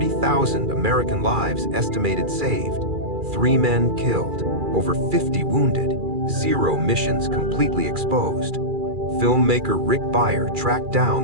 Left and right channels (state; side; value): late; left; 2.4 ms